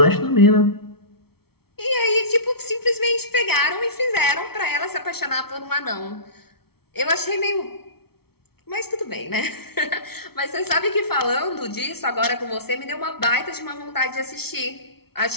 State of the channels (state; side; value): late; right; 0.95 ms